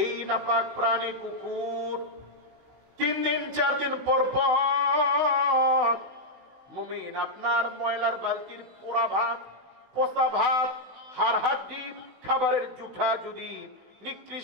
এই নাপাক প্রাণী কুকুর 3 দিন 4 দিন পর পর মুমিন আপনার ময়লার বালতির পোড়া ভাত, পচা ভাত, হাড় হাড্ডি, খাবারের জুঠা যদি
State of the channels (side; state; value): left; late; 16 ms